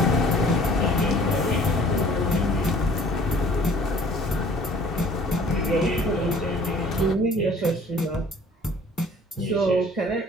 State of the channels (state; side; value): normal; both; correlation 0.52